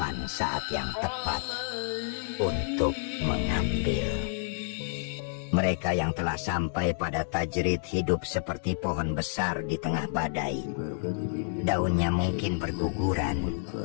saat yang tepat untuk mengambil. Mereka yang telah sampai pada tajrid hidup seperti pohon besar di tengah badai. Daunnya mungkin berguguran,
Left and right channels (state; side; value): silent; right; 58 dB below the other